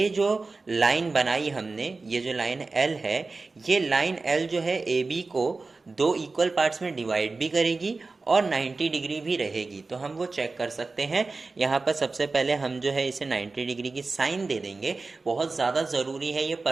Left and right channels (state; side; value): quieter; left; 3.8 dB